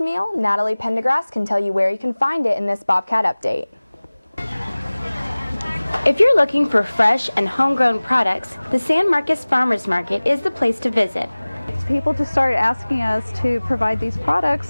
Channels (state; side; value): inverted; both; correlation -1.00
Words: Natalie Pendergrass can tell you where you can find it in this Bobcat update. If you're looking for fresh and homegrown products, the San Marcos Farmers Market is the place to visit. People just started asking us to provide these products,